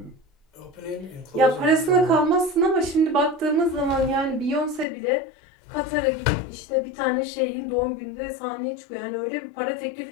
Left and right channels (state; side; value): drops out; right; at 4.9 s